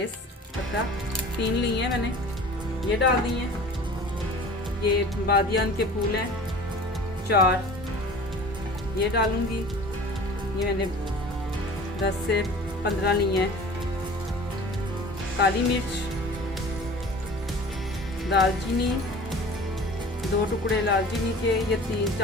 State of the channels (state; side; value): normal; both; correlation 0.42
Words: पत्ता, 3 ली हैं मैंने, ये डाल दी हैं। ये बादियान के फूल हैं 4, ये डालूंगी। ये मैंने 10 से 15 ली हैं। काली मिर्च, दालचीनी, 2 टुकड़े दालचीनी के, ये